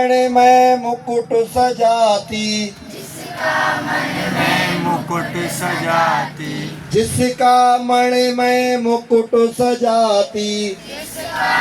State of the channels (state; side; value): identical; both; correlation 1.00